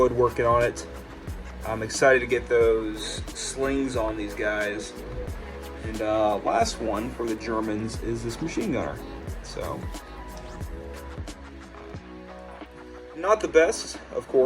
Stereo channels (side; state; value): both; identical; correlation 1.00